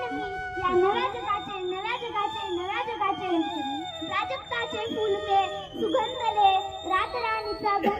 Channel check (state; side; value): identical; both; correlation 1.00